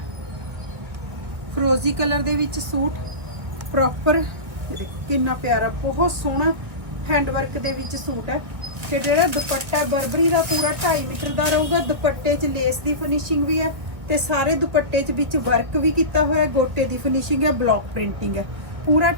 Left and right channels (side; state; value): left; late; 1.7 ms